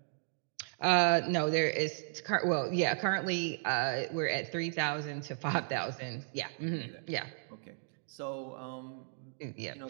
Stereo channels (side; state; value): left; silent; digital silence